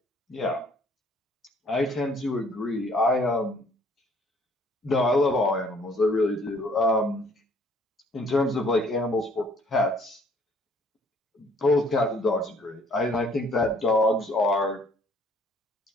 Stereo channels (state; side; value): normal; both; correlation 0.59